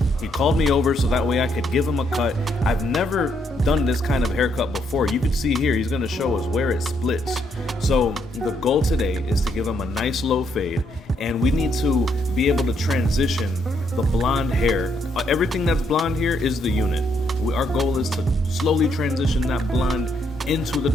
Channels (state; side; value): normal; both; correlation 0.74